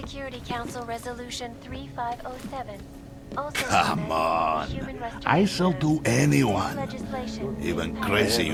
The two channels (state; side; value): identical; both; correlation 1.00